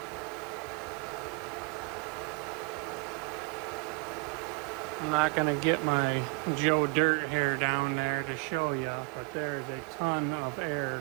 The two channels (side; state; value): left; quieter; 32.3 dB